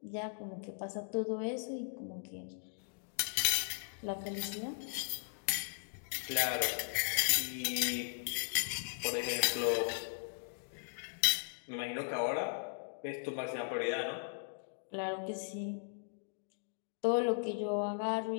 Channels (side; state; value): right; silent; digital silence